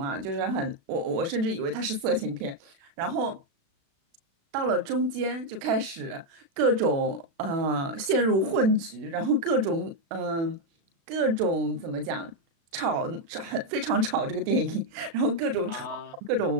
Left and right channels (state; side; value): late; left; 36 ms